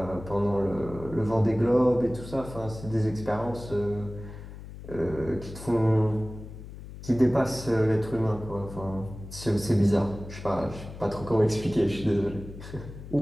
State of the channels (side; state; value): left; noise; hum, 13 dB below the sound